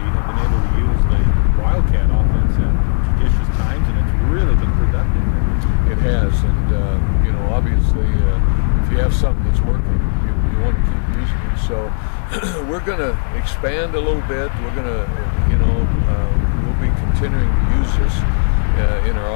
been able to use the Wildcat offense at judicious times, and it's really been productive. It has, and you know, obviously, if you have something that's working, you want to keep using it. So we're going to expand a little bit. We're going to, we'll be continuing to use this in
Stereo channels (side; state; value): right; silent; digital silence